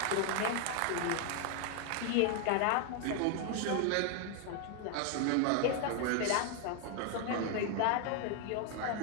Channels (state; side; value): different; both; correlation 0.00